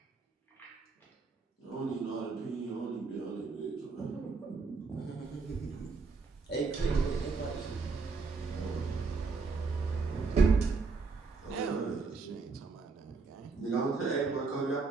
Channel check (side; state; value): left; quieter; 4.5 dB